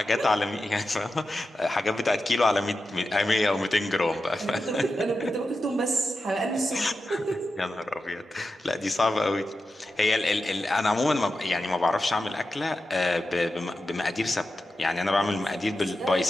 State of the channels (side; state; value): both; normal; correlation 0.91